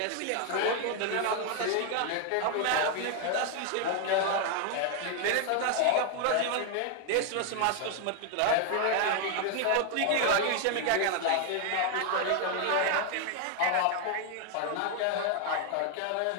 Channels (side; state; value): both; different; correlation 0.00